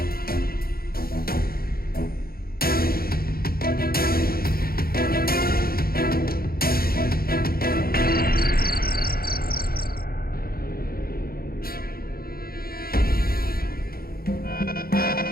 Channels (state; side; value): late; right; 0.44 ms